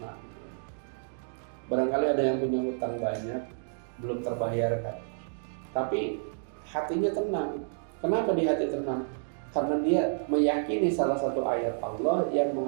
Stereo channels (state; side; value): silent; left; digital silence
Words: Barangkali ada yang punya hutang banyak, belum terbayarkan, tapi hatinya tenang. Kenapa di hati tenang? Karena dia meyakini salah satu ayat Allah yang